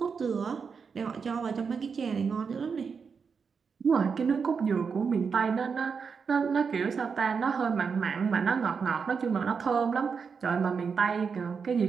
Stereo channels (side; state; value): left; quieter; 5.7 dB